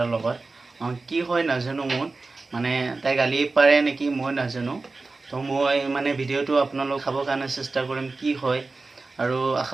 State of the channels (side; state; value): left; quieter; 3.7 dB